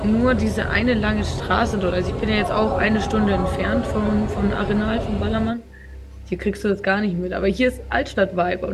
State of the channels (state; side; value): identical; both; correlation 1.00